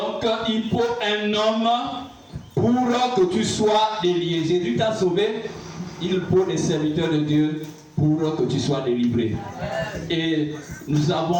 il faut un homme pour que tu sois délié. Jésus t'a sauvé, il faut des serviteurs de Dieu pour que tu sois délivré. Et nous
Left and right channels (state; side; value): identical; both; correlation 1.00